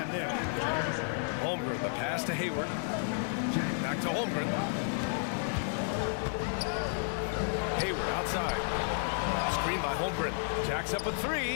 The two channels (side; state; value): right; silent; 56 dB below the other